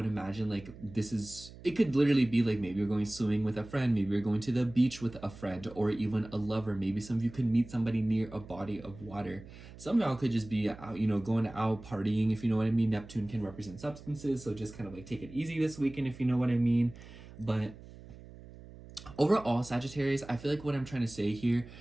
imagine like it could literally be like maybe you're going swimming with a friend, maybe you're going to the beach with a friend, or even a lover. Maybe some of you could meet somebody near a body of water. Some of y'all could just be out, going out partying, if you know what I mean. Neptune can represent substances, so just kind of like take it easy this weekend, if you know what I mean. But overall, Sagittarius, I feel like what I'm trying to say here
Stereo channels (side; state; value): right; noise; hum, 17 dB below the sound